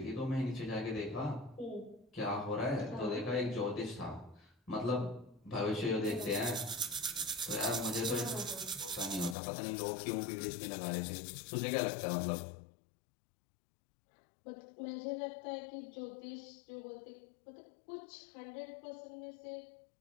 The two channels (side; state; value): right; drops out; at 9.3 s